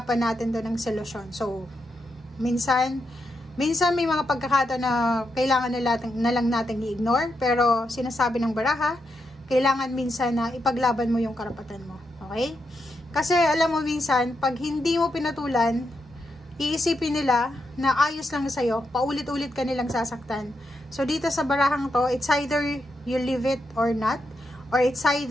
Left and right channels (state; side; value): normal; both; correlation 0.83